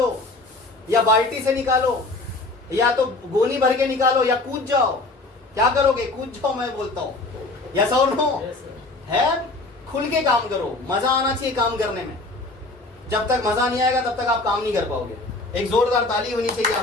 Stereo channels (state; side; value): quieter; right; 3.1 dB